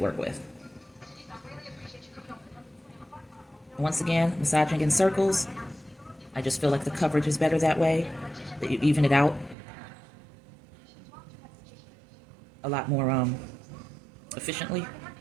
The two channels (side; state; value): left; drops out; at 9.6 s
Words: with. Once again, massaging in circles. I just feel like the coverage is better that way, that you even it out a lot more efficiently.